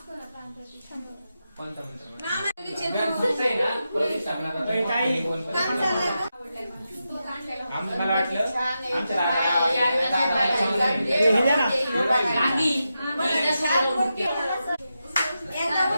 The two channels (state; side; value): inverted; both; correlation -0.88